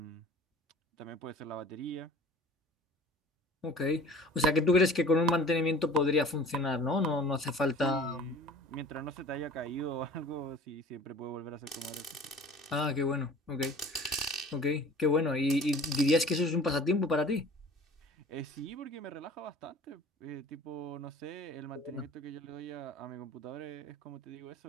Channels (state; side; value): normal; both; correlation 0.45